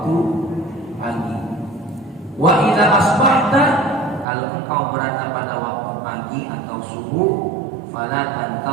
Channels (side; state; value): left; drops out; at 4.2 s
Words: pagi. Wa idza asbahta, kalau engkau berada pada waktu pagi atau subuh, fala